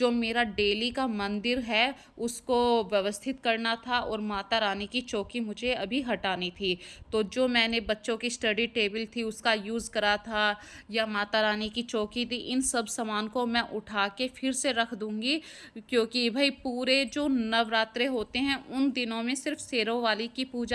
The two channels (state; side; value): identical; both; correlation 1.00